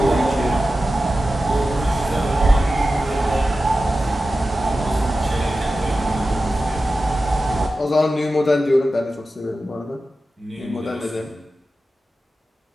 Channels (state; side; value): normal; both; correlation 0.93